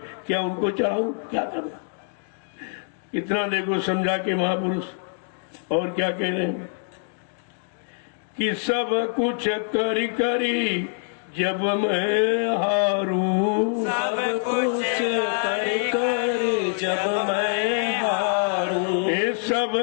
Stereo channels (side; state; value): right; silent; digital silence